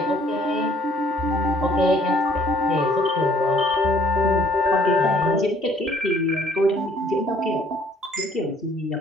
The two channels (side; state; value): both; normal; correlation 0.60